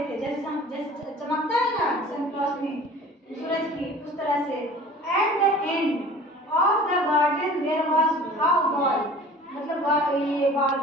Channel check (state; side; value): normal; both; correlation 0.44